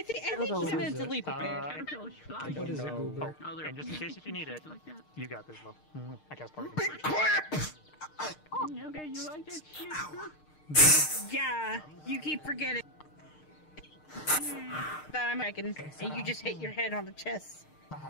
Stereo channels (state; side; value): late; right; 6.5 ms